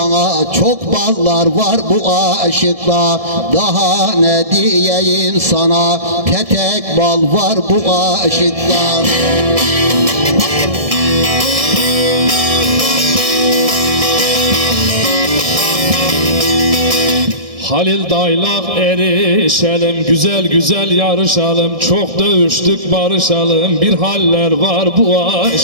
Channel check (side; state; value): left; late; 1.7 ms